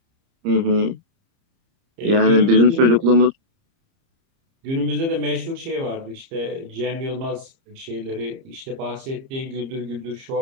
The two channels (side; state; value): left; late; 30 ms